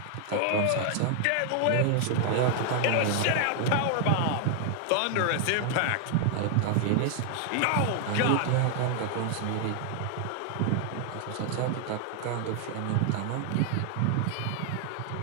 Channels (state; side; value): different; both; correlation 0.00